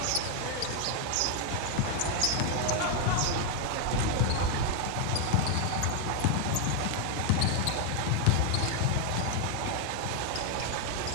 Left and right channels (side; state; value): both; different; correlation 0.01